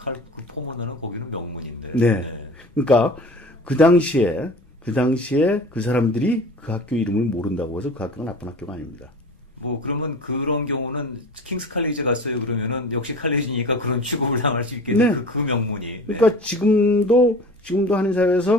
포모나는 거기는 명문인데. 네. 그러니까 그 당시에 그 사람들이 그 학교 이름을 모른다고 해서 그 학교가 나쁜 학교가 아닙니다. 그러면 그런 경우는 킹스 칼리지 갔어요 그러면은 역시 칼리지니까 그런 취급을 당할 수 있겠네. 네. 그 명문이. 그러니까 지금도 한인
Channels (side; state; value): both; normal; correlation 0.39